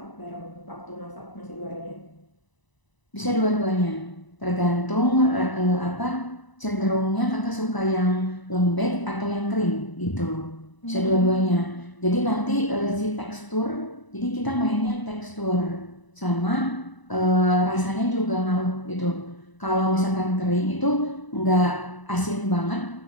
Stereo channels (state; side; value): late; right; 1.0 ms